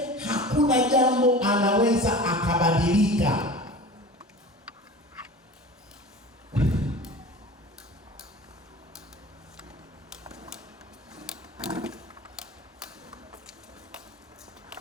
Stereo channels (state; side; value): normal; both; correlation 0.37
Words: hakuna jambo anaweza akabadilika.